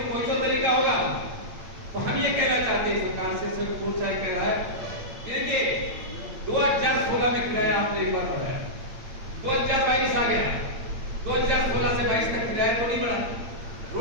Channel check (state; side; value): late; left; 8.7 ms